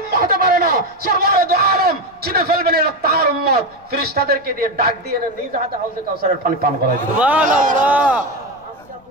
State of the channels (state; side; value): noise; left; rumble, 30 dB below the sound